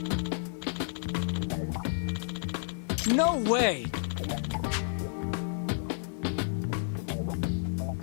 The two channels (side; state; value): right; silent; digital silence